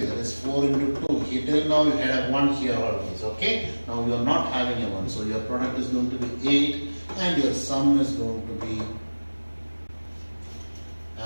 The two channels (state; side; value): inverted; both; correlation -1.00